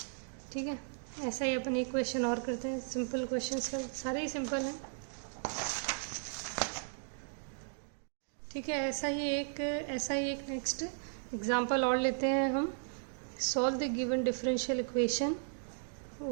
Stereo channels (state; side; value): silent; left; digital silence